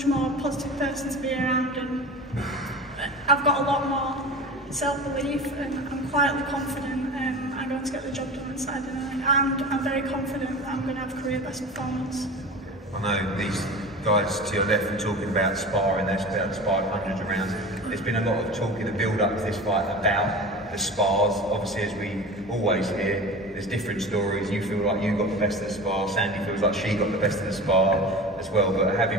more positive person to be around, and I've got a lot more self-belief, and I'm quietly confident I'm going to get the job done on Saturday night, and I'm very confident that I'm going to have a career best performance. I know these guys to your left are talking about sparring, they've sparred hundreds of rounds. There's been a lot of talk in the build-up to this fight about the spars. Obviously, as we always hear, there's different stories. You feel like you got the best of the spar, Sandy feels like she got the best of the spar as well, but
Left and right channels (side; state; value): both; normal; correlation 0.33